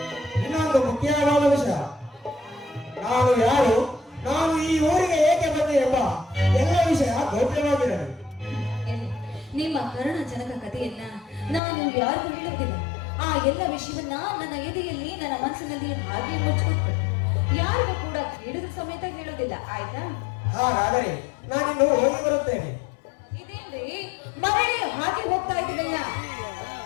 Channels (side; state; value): right; drops out; at 11.6 s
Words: ಇನ್ನೊಂದು ಮುಖ್ಯವಾದ ವಿಷಯ. ನಾನು ಯಾರು, ನಾನು ಈ ಊರಿಗೆ ಏಕೆ ಬಂದೆ ಎಂಬ ಎಲ್ಲ ವಿಷಯ ಗೌಪ್ಯವಾಗಿರಲಿ. ನಿಮ್ಮ ಕರುಣಜನಕ ಕಥೆಯನ್ನ ನಾನು ಯಾರಿಗೂ ಹೇಳುತ್ತಿಲ್ಲ. ಆ ಎಲ್ಲ ವಿಷಯವನ್ನ ನನ್ನ ಎದೆಯಲ್ಲಿ, ನನ್ನ ಮನಸ್ಸಿನಲ್ಲಿ ಹಾಗೆ ಮುಚ್ಚಿಕೊಟ್ಟು ಯಾರಿಗೂ ಕೂಡ ಕೇಳಿದ ಸಮೇತ ಹೇಳೋದಿಲ್ಲ, ಆಯ್ತಾ? ಹಾಗಾದರೆ ನಾನಿನ್ನು ಹೋಗಿ ಬರುತ್ತೇನೆ. ಇದೇನ್ರಿ ಮರಳಿ ಹಾಗೆ ಹೋಗ್ತಾ ಇದ್ದೀನಲ್ಲ?